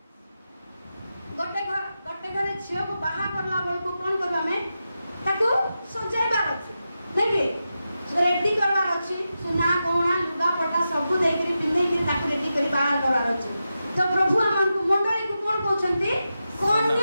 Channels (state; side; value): inverted; both; correlation -0.90